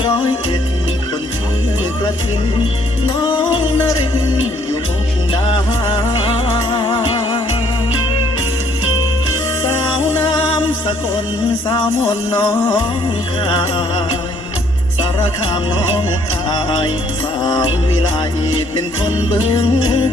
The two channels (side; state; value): both; normal; correlation 0.65